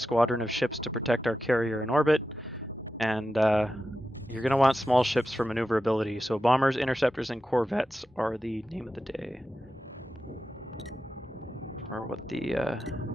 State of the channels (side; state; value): both; normal; correlation 0.91